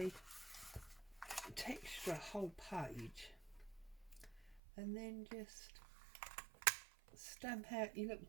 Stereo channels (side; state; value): left; drops out; at 4.6 s